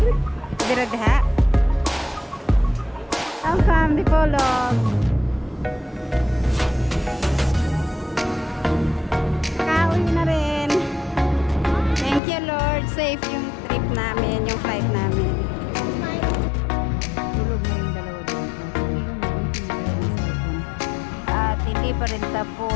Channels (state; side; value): drops out; right; at 12.2 s